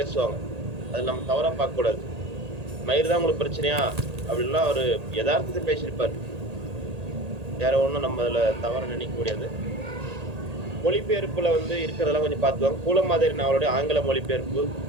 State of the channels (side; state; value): left; late; 1.8 ms